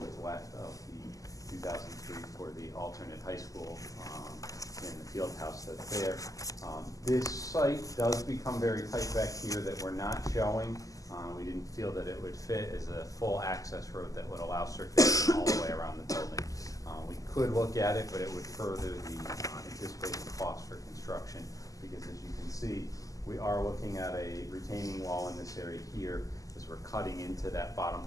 left of the 2003 for the alternate high school in the field house that's there. This site does become very tight back here that we're not showing. We didn't feel that it would fit as a full access road that would allow circulation all the way around the building. We could look at it, but it would further the anticipated cost for construction, because as you can see, we are looking at a retaining wall in this area here as we're cutting into that bottom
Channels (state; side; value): late; right; 0.17 ms